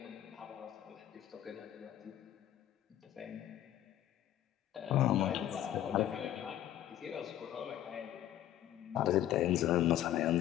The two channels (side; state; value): right; quieter; 12.1 dB